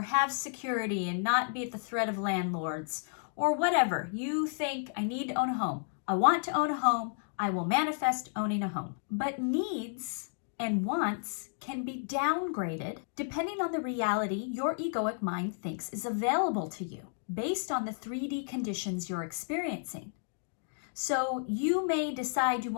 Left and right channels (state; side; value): silent; right; digital silence